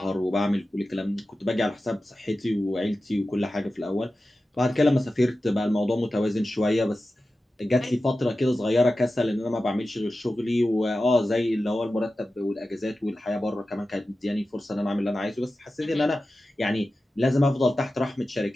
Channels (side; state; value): both; normal; correlation 0.94